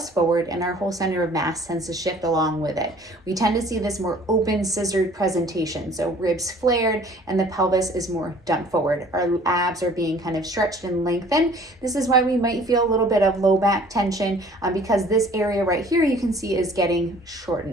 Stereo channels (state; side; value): normal; both; correlation 0.52